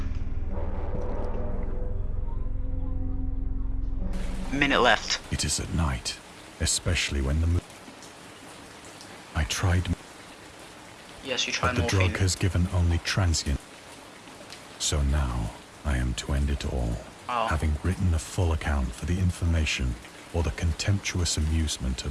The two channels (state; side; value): identical; both; correlation 1.00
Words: Minute left. It is at night, especially when the moon... I tried... Yes, you tried but the morphine. drug has given only transient. So now, I am to end it all, having written a full account for the information or the contemptuous amusement